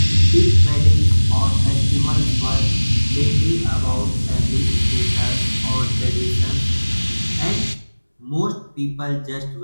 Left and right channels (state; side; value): inverted; both; correlation -1.00